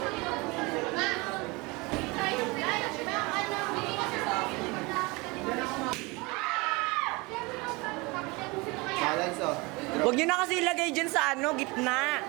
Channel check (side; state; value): left; quieter; 25.6 dB